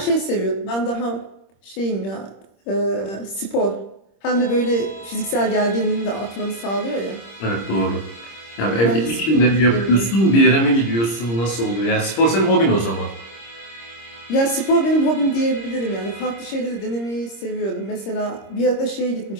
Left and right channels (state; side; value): late; right; 26 ms